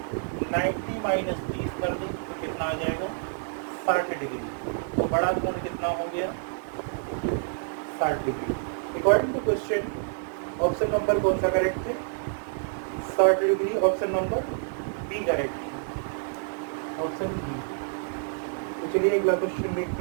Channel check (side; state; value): left; silent; 59 dB below the other